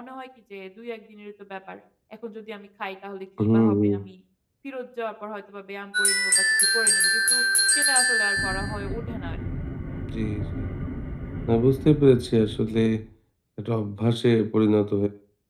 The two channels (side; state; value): both; identical; correlation 1.00